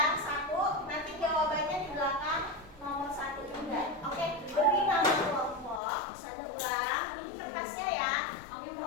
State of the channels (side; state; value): right; drops out; at 5.8 s